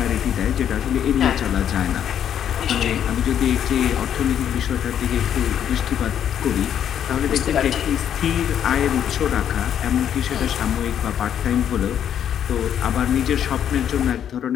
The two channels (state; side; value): quieter; right; 9.5 dB